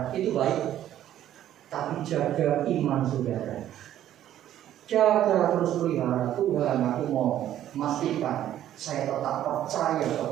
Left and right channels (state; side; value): quieter; left; 11.9 dB